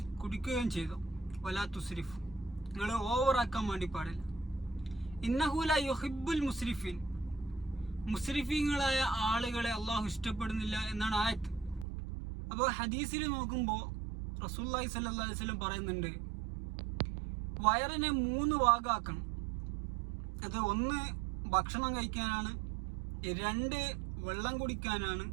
കുടിക്കുകയും ചെയ്തു, വലാ തുസ്രിഫു, നിങ്ങൾ ഓവറാക്കാൻ വേണ്ടി പാടില്ല. ഇന്നഹു ലാ യുഹിബ്ബുൽ മുസ്രിഫീൻ, മുസ്രിഫീങ്ങളായ ആളുകളെ അള്ളാഹു ഇഷ്ടപ്പെടുന്നില്ല എന്നാണ് ആയത്ത്. അപ്പോൾ ഹദീസിൽ നോക്കുമ്പോൾ റസൂലുള്ളാഹി സ്വല്ലല്ലാഹു അലൈഹി വസല്ലം പറയുന്നുണ്ട്, വയറിനെ 3 ഭാഗമാക്കണം. അത് 1 ഭക്ഷണം കഴിക്കാനാണ്, 2 വെള്ളം കുടിക്കാനാണ്,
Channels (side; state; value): left; drops out; at 11.9 s